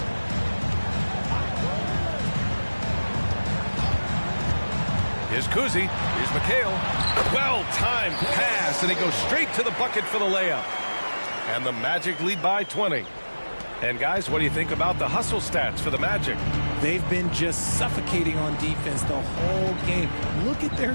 Here's Kuzi. Here's McHale. Well-timed pass, and he goes straight to the bucket for the layup. And the Magic lead by 20. And guys, what do you think about the hustle stats for the Magic? They've been just suffocating on defense the whole game. Look at their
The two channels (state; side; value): inverted; both; correlation -1.00